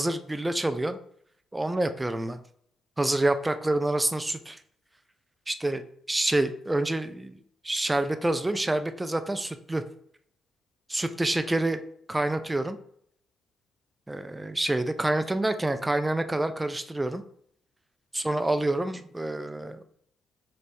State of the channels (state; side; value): normal; both; correlation 0.97